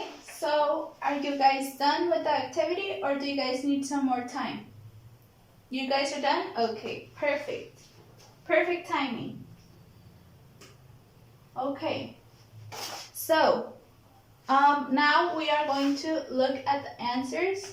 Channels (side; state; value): both; identical; correlation 1.00